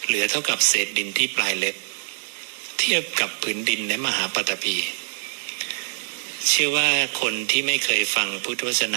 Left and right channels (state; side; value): silent; left; digital silence